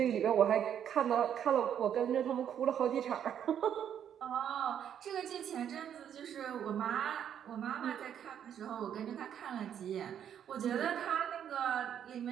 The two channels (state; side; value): quieter; left; 9.2 dB